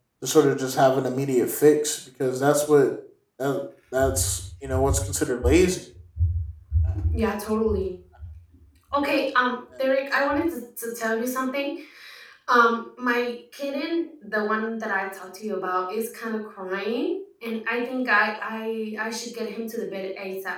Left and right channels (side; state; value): both; identical; correlation 1.00